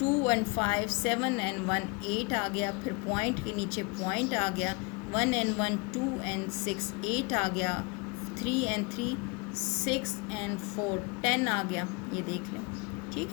and 5 7 and 1 8 आ गया, फिर पॉइंट के नीचे पॉइंट आ गया, 1 and 1 2 and 6 8 आ गया, 3 and 3 6 and 4 10 आ गया। ये देख लें, ठीक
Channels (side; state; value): right; quieter; 29.9 dB